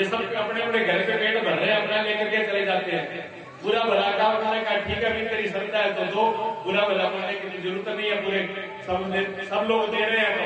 सब अपने अपने घर पे पेट भर रहे हैं, अपना लेकर के चले जाते हैं। बुरा भला का उन्होंने कहा ठीक है, भी तेरी श्रद्धा है तो दो, बुरा भला बोलने की जरूरत नहीं है। पूरे सब लोग दे रहे हैं तो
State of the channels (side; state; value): both; identical; correlation 1.00